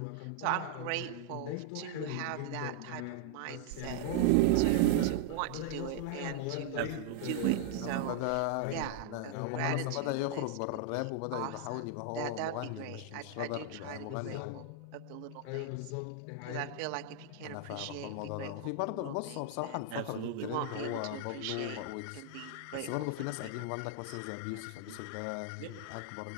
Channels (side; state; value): both; different; correlation 0.00